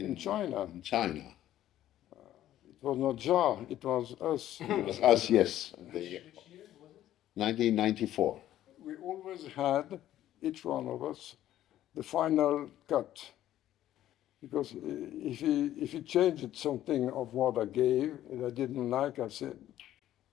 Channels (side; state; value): right; quieter; 12.8 dB